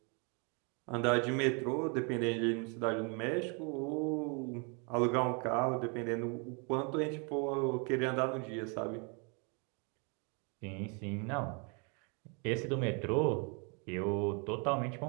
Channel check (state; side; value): quieter; left; 35.2 dB